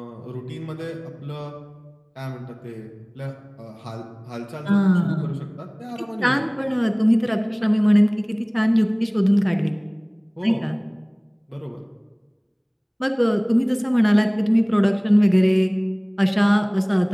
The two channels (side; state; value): both; identical; correlation 1.00